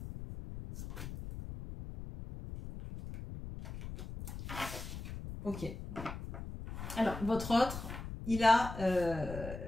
Ok. Alors, votre autre, il a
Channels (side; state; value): left; noise; rumble, 9 dB below the sound